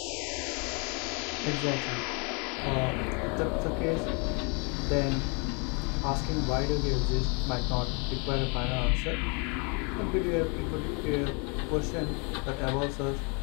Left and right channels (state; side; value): quieter; right; 33.9 dB